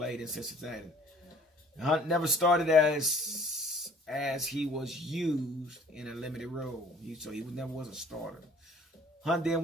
in Cincinnati. Hunt never started as he was used in a limited role. So he never was a starter. Hunt then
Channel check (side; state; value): both; normal; correlation 0.53